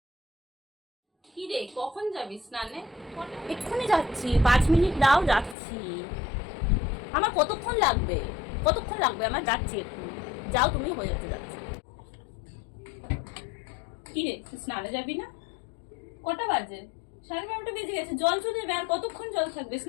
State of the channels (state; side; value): drops out; right; at 5.6 s